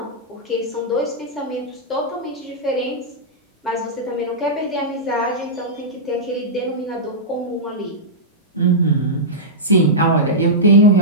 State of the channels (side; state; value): both; normal; correlation -0.12